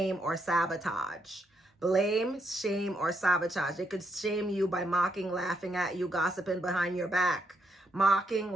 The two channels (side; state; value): both; normal; correlation 0.77